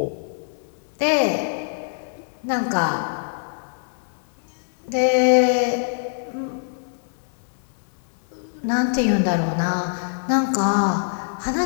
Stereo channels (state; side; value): silent; right; 63 dB below the other